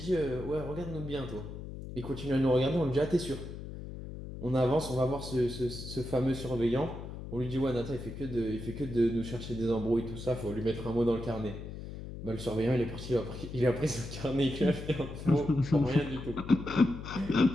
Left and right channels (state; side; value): noise; left; hum, 10 dB below the sound